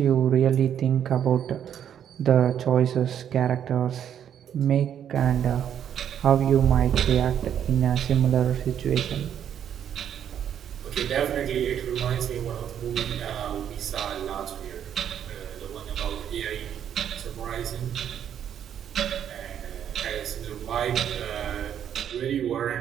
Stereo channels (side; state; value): left; quieter; 9.3 dB